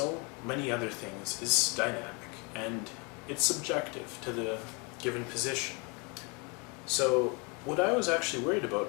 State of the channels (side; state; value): right; quieter; 31.3 dB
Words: many other things, is dynamic, and it's subjective to the given position. So what I was actually worried